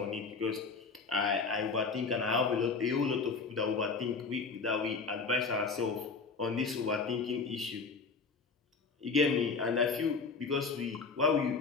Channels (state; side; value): quieter; right; 4.6 dB